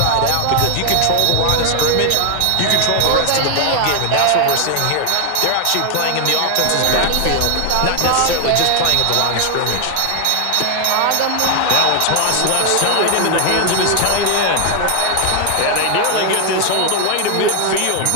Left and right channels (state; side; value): different; both; correlation 0.00